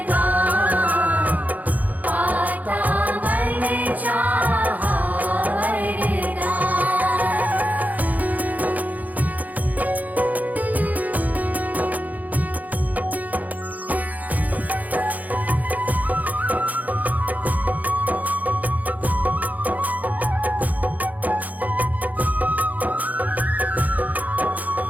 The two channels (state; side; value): late; left; 0.079 ms